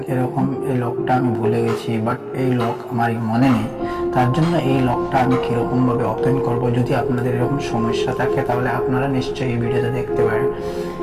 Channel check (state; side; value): identical; both; correlation 1.00